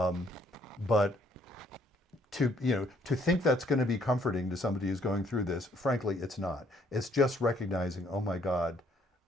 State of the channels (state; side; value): normal; both; correlation 0.66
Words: to think that's going to be comforting to somebody who's going through this, frankly, it's not. It's just recognizing, oh my God,